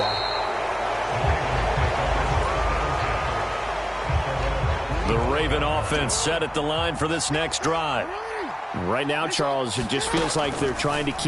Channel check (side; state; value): both; identical; correlation 1.00